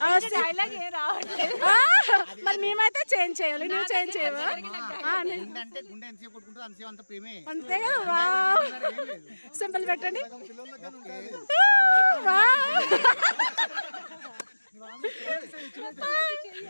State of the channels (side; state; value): both; inverted; correlation -1.00